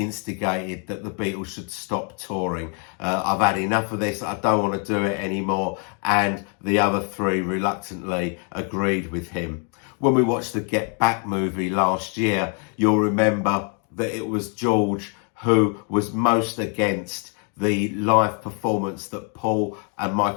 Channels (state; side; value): quieter; right; 39.2 dB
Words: that the Beatles should stop touring. I've had enough of this, I don't want to do it anymore. And the other three reluctantly agreed with him. When we watched the Get Back movie last year, you'll remember that it was George who was most against the live performance that Paul and